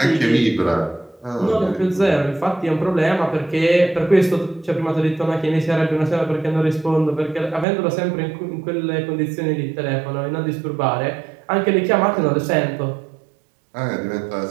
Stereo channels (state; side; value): drops out; left; at 7.7 s